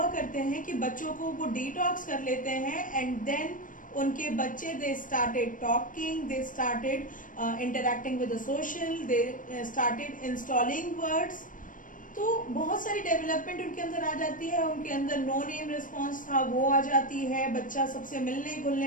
करते हैं कि बच्चों को वो डिटॉक्स कर लेते हैं एंड देन उनके बच्चे they started talking, they started interacting with the social, they started installing words. तो बहुत सारी डेवलपमेंट उनके अंदर आ जाती है। उनके अंदर नो नेम रिस्पॉन्स था वो आ जाती है, बच्चा सबसे मिलने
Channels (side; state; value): right; late; 0.38 ms